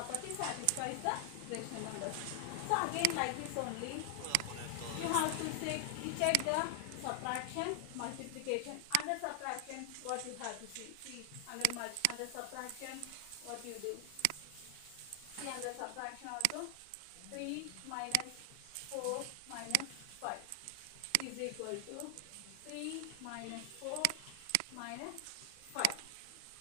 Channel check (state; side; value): different; both; correlation 0.00